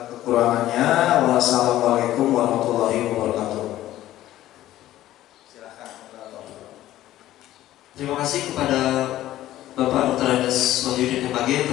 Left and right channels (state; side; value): quieter; right; 14.2 dB